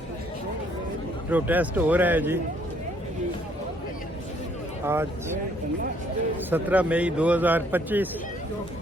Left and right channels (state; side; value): normal; both; correlation 0.65